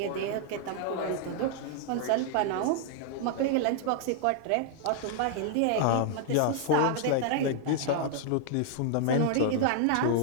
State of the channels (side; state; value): both; different; correlation 0.00